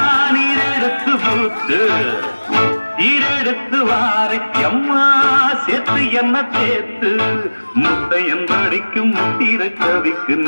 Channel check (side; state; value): both; inverted; correlation -1.00